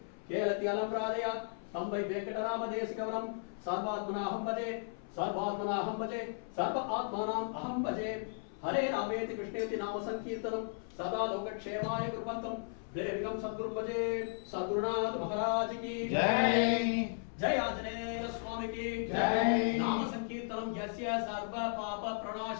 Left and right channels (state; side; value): silent; right; 54 dB below the other